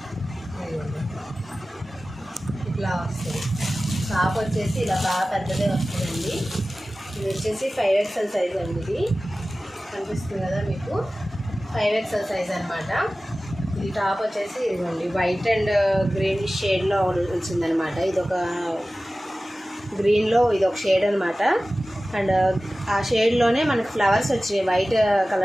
ఇట్లా వస్తుంది. టాప్ వచ్చేసి ఇలా బాగా పెద్దదే వస్తుందండి. ఇది వచ్చేసి 5XL సైజ్ అండి. ఇది కనిపిస్తుంది కదా మీకు, 5XL సైజ్ అనమాట. ఇది టాప్ వచ్చేసి ఇదిగోండి వైట్ అండ్ గ్రీన్ షేడ్లో వచ్చిందనమాట. ఇది ఒక గ్రీన్లో ఇది ఒక షేడ్ అనమాట. అండ్ ఆ షేడ్లోనే మనకి ఫ్లవర్స్ వచ్చినాయి. వైట్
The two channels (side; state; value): both; normal; correlation 0.96